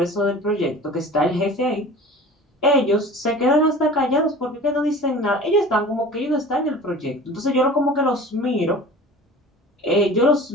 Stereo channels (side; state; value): both; normal; correlation 0.40